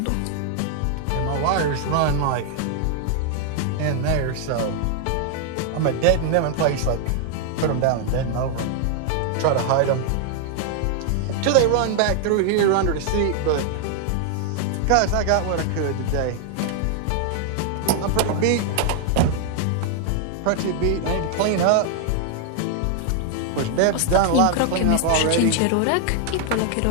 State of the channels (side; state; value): both; different; correlation 0.00